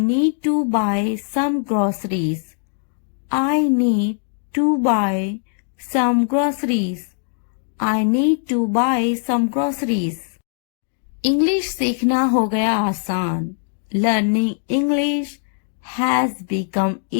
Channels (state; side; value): silent; right; 63 dB below the other